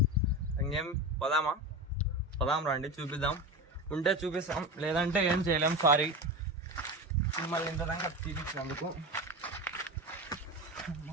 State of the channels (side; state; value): both; normal; correlation 0.25